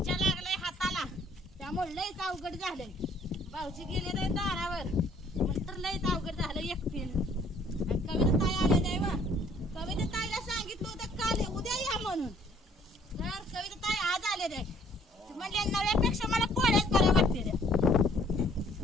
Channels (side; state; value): both; normal; correlation 0.60